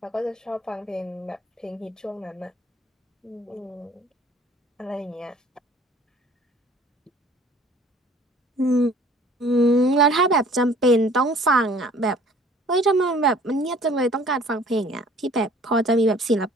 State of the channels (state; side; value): normal; both; correlation 0.53